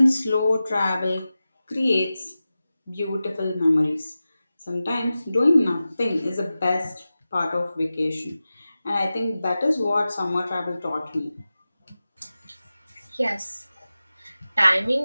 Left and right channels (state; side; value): inverted; both; correlation -0.94